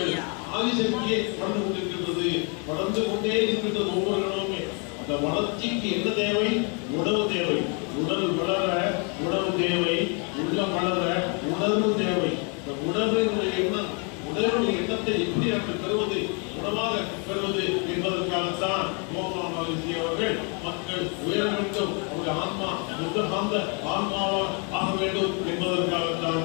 ஆதிசக்தியை வளர்ந்து கொண்டிருக்கின்றது, வளர்ந்து கொண்டே இருக்கின்றது ஒவ்வொரு இடமுமே. அந்த வளர்ச்சிக்கு என்ன தேவை? உணவு தேவை. உடல் வளர உணவு தேவை, உள்ளம் வளர உணர்வு தேவை. இந்த உணர்வினுடைய எண்ணம், உணர்வுடைய எண்ணத்தை எப்படி நாங்கள் பெறுவது, உணவாக பெறுவது என்பதற்காகத்தான் கோமா மகிழ்ச்சி அவர்கள் மக்கள் உயர வேண்டும், அவருடைய ஆன்மா புத்தகாந்த ஆன்மாவாக ஆக வேண்டும் என்பதற்காகத்தான்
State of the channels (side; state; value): right; quieter; 36.2 dB